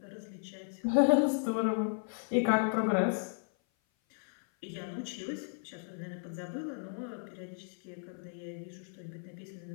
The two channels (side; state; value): right; silent; 55 dB below the other